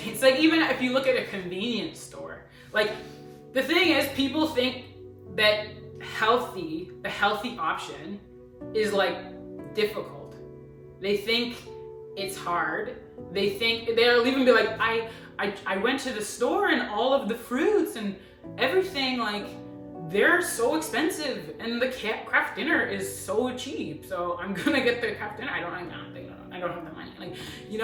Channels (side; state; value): both; identical; correlation 1.00